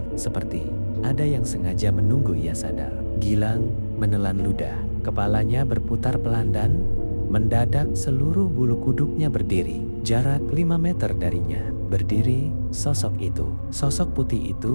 seperti ada yang sengaja menunggu ia sadar. Gilang menelan ludah, kepalanya berputar pelan dan mendadak seluruh bulu kuduknya berdiri. Jarak 5 meter darinya berdiri sosok itu. Sosok putih itu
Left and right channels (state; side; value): inverted; both; correlation -1.00